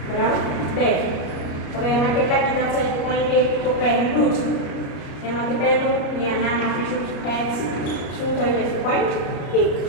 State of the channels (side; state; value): right; late; 33 ms